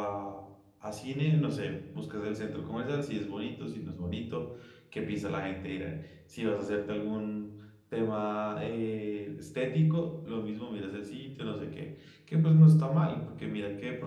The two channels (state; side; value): identical; both; correlation 1.00